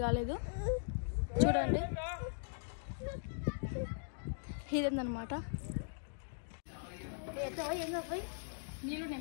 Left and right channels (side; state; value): right; silent; digital silence